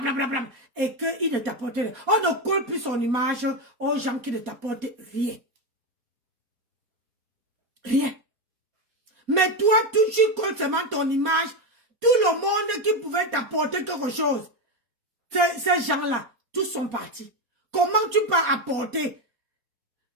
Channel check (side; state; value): left; late; 4.2 ms